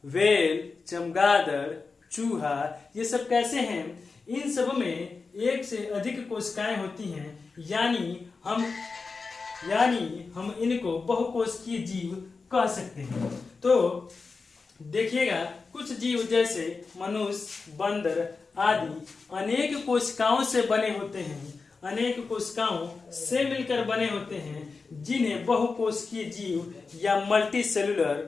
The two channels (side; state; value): right; quieter; 4.4 dB